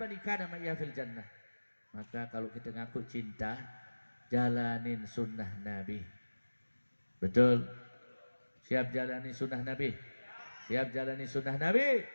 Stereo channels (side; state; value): both; inverted; correlation -1.00